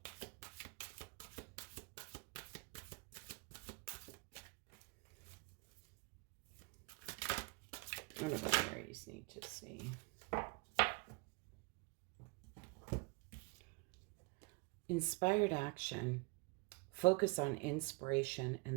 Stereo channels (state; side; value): quieter; left; 28.3 dB